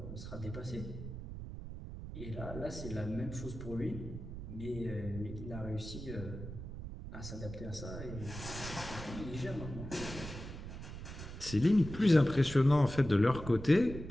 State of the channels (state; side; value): noise; right; rumble, 9 dB below the sound